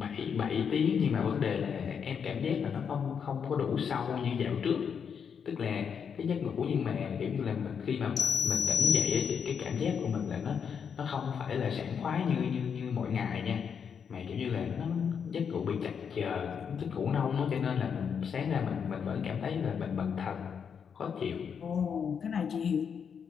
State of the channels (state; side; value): quieter; right; 7.0 dB